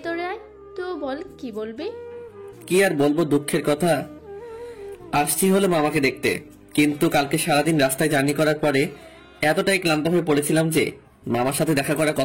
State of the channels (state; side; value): identical; both; correlation 1.00